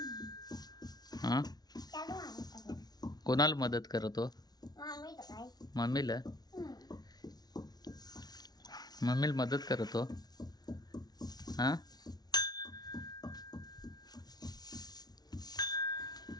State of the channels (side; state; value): right; late; 0.19 ms